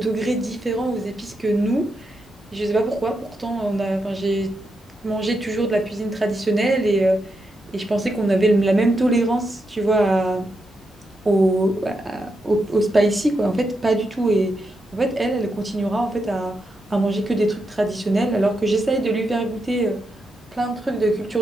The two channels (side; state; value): both; normal; correlation 0.84